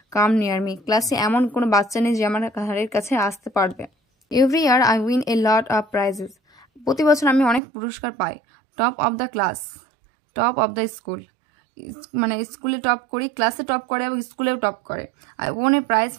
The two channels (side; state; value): left; drops out; at 7.6 s